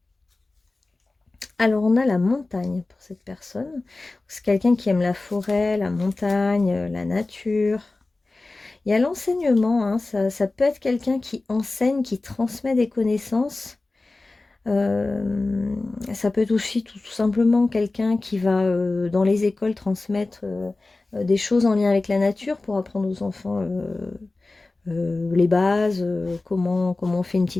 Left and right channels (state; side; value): quieter; right; 3.2 dB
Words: Alors on a la montagne pour cette personne. C'est quelqu'un qui aime la forêt, la montagne, la nature. Il y a l'enseignement, hein, ça peut être quelqu'un qui enseigne, qui transmet des connaissances. Ça peut être aussi tout simplement quelqu'un qui va dans les écoles transmettre des choses en lien avec la nature pour apprendre aux enfants les bases, comment on fait une